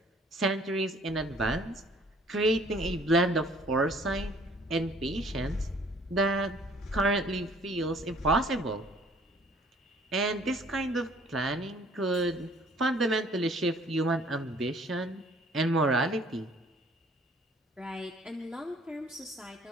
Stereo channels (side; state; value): both; normal; correlation 0.57